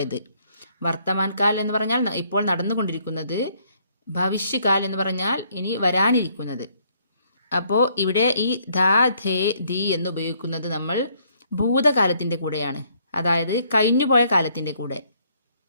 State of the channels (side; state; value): both; inverted; correlation -0.67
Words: വർത്തമാൻകാൽ എന്ന് പറഞ്ഞാൽ ഇപ്പോൾ നടന്നുകൊണ്ടിരിക്കുന്നത്, ഭവിഷ്യകാൽ എന്ന് പറഞ്ഞാൽ ഇനി വരാനിരിക്കുന്നത്. അപ്പോൾ ഇവിടെ ഈ ധ, ഥേ, ധി എന്ന് ഉപയോഗിക്കുന്നത് നമ്മൾ ഭൂതകാലത്തിൻ്റെ കൂടെയാണ്, അതായത് കഴിഞ്ഞുപോയ കാലത്തിൻ്റെ കൂടെ.